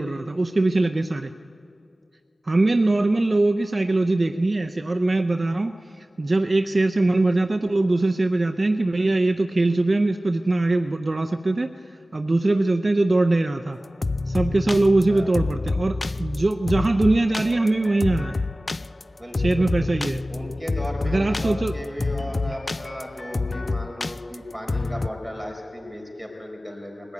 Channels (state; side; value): normal; both; correlation 0.98